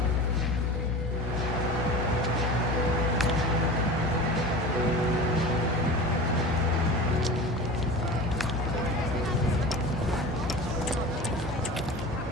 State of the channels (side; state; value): both; normal; correlation 0.34